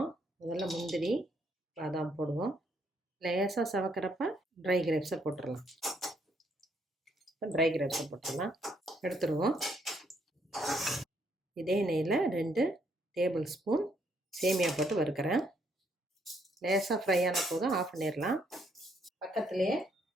முதல்ல முந்திரி பாதாம் போடுவோம். லேசாக சவக்கிறப்ப ட்ரை கிரேப்ஸை போட்டுடலாம். இப்போ ட்ரை கிரேப்ஸை போட்டுடலாம், எடுத்துருவோம். இதே நெய்யில் 2 டேபிள் ஸ்பூன் சேமியா போட்டு வறுக்கிறேன். லேசாக ஃப்ரை ஆன போதும் ஆஃப் பண்ணிடலாம். பக்கத்துலேயே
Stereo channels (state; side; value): normal; both; correlation 0.71